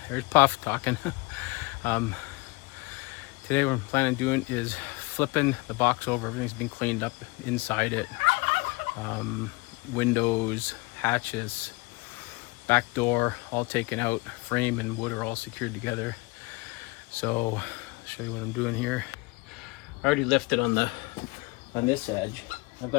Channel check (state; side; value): quieter; right; 25.7 dB